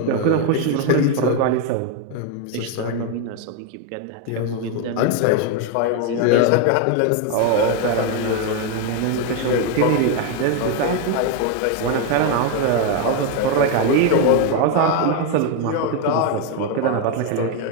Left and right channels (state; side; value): different; both; correlation 0.01